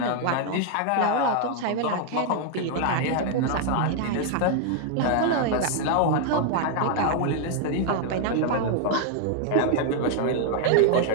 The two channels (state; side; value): different; both; correlation 0.00